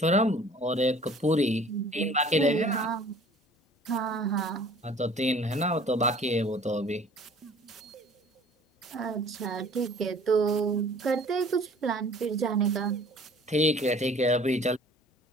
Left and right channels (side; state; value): both; normal; correlation 0.50